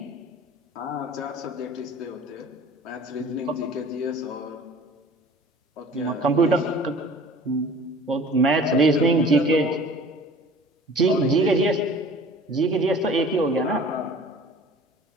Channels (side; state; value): both; normal; correlation 0.46